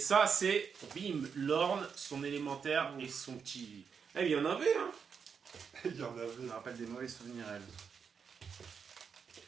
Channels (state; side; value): quieter; left; 6.4 dB